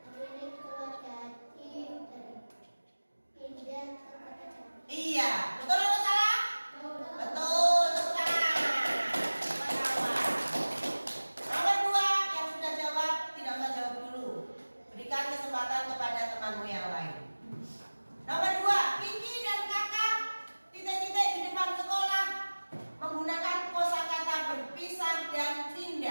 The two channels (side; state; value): both; inverted; correlation -1.00